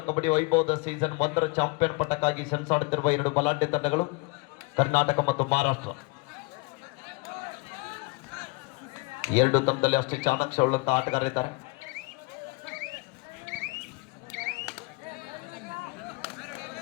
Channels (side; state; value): right; quieter; 28.3 dB